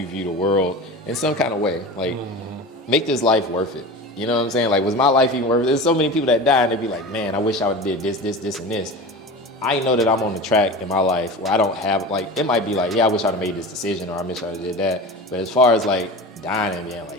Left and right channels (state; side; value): normal; both; correlation 0.31